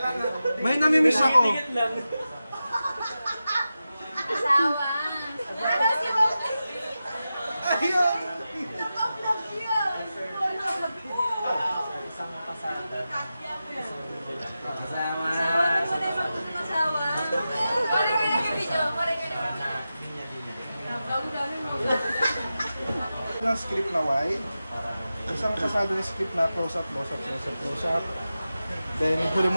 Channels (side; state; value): both; inverted; correlation -0.92